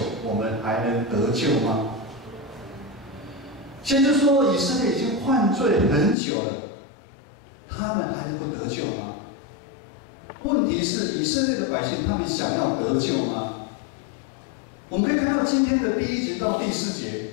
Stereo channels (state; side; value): drops out; right; at 6.2 s